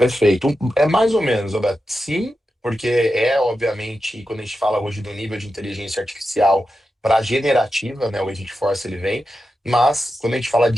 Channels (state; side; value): normal; both; correlation 0.90